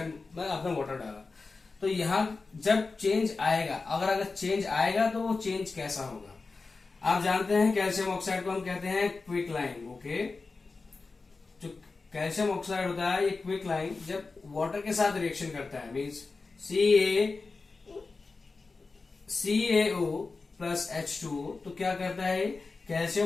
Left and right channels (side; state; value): right; quieter; 4.0 dB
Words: में आपने वाटर डाला, तो यहां जब चेंज आएगा, अगर चेंज आएगा तो वो चेंज कैसा होगा। आप जानते हैं कैल्शियम ऑक्साइड को हम कहते हैं क्विक लाइन। ओके, जो कैल्शियम ऑक्साइड होता है, ये क्विक लाइन जब वाटर के साथ रिएक्शन करता है, मीन्स CaO प्लस H2O, तो क्या करता है,